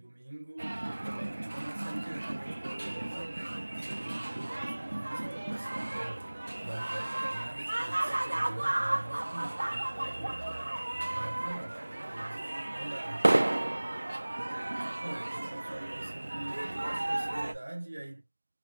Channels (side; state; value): both; inverted; correlation -1.00